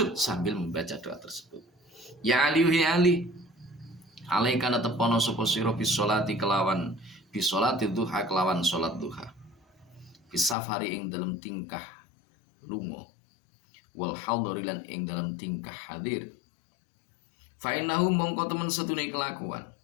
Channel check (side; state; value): right; drops out; at 10.6 s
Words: sambil membaca doa tersebut. Ya Ali, ya Ali, alaikana tepono sapa sira bisolati kelawan bisolati duha kelawan salat duha, bisafari ing dalam tingkah lunga, wal hadari lan ing dalam tingkah hadir. Fa innahu mongko temen setune kelakuan